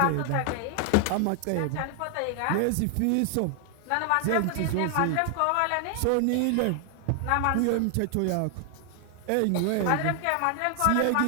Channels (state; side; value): different; both; correlation 0.00